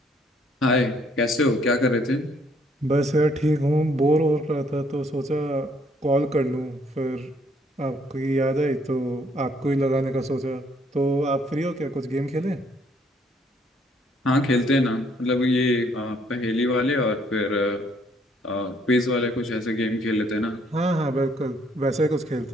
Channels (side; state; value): both; normal; correlation 0.66